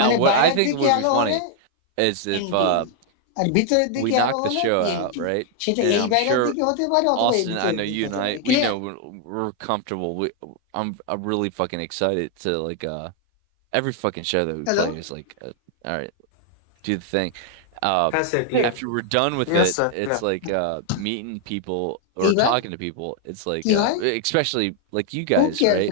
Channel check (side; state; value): both; different; correlation 0.00